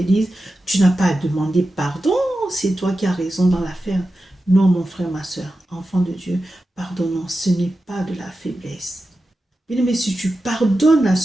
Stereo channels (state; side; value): normal; both; correlation 0.92